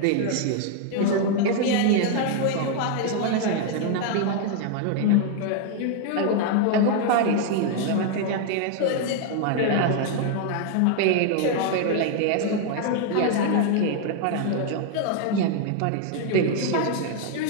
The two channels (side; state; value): both; different; correlation 0.00